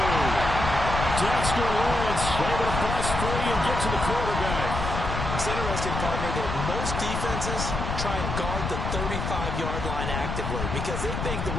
Dexter Lawrence able to bust free and get to the quarterback. It's interesting, partner, that most defenses try and guard the 35-yard line actively because they think the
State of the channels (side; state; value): left; noise; rumble, 3 dB below the sound